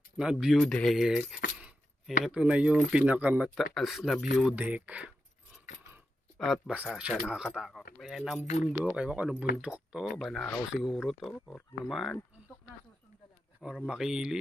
na view deck. Ito na yung pinakamataas na view deck. At basa siya, nakakatakot. Ayan ang bundok. Ewan ko anong bundok to. Banahaw siguro to. Or naman. Bundok na susundalaga. Or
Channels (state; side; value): normal; both; correlation 0.88